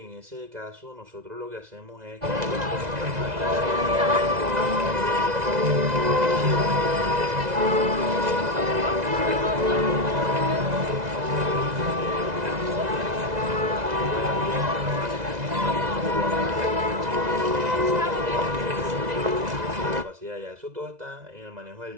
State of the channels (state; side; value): late; left; 2.0 ms